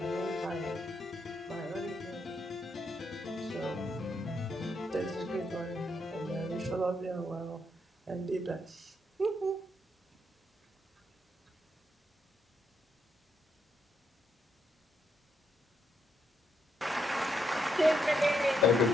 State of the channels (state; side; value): normal; both; correlation 0.78